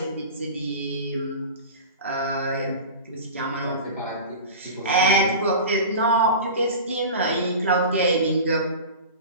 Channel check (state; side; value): inverted; both; correlation -0.33